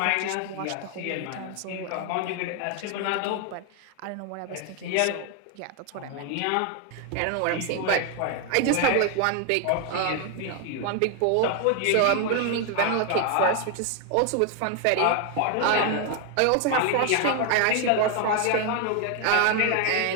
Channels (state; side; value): different; both; correlation 0.01